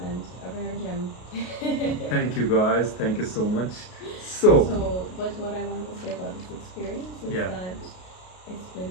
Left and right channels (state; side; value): late; right; 33 ms